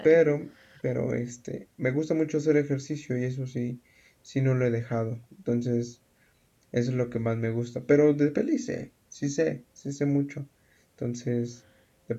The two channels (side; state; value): both; identical; correlation 1.00